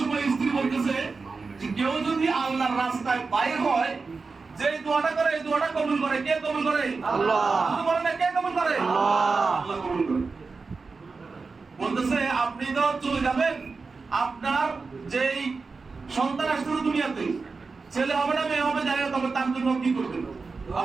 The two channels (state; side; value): quieter; left; 4.4 dB